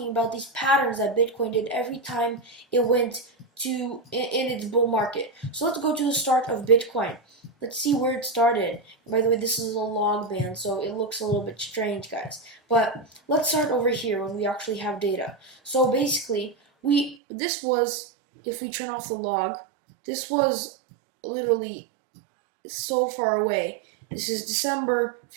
about these patterns that Bitcoin did every time it went in its bull market. So let's go to the start of Bitcoin. Let's see where it started. By the way, this is a log band, so it looks a little bit strange, guys. But let's start over here when we actually have data. So basically, this was, if we turn off the log, this was literally so far away. This is December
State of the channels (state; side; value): drops out; left; at 17.2 s